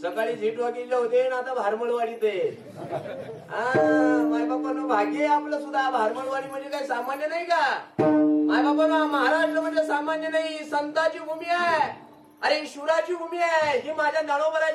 सकाळी झी टॉकीजला होते ना आता भारमळवाडीत आहे. मायबापानं भाग्य आपलं सुद्धा. भारमळवाडी म्हणजे काही सामान्य नाही का? मायबापानं महाराष्ट्र म्हणजे सामान्य नाही, संतांची भूमी आहे. अरे शिवराची भूमी आहे ही. माझ्या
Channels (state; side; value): identical; both; correlation 1.00